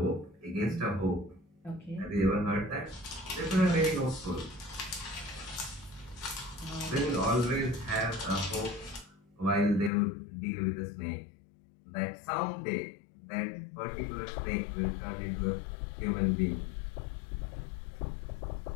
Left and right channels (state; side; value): drops out; right; at 9.9 s